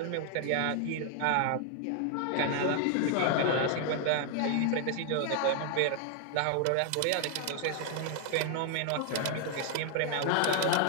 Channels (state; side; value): different; both; correlation 0.00